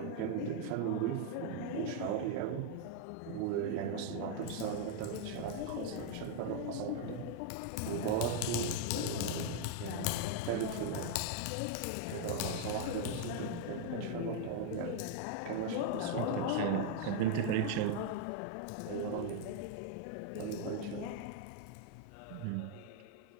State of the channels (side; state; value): both; different; correlation 0.00